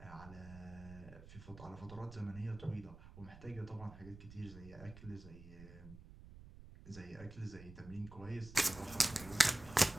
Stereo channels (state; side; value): noise; right; rumble, 16 dB below the sound